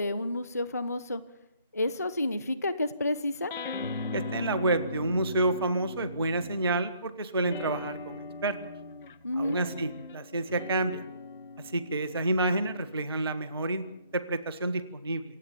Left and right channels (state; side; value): inverted; both; correlation -0.64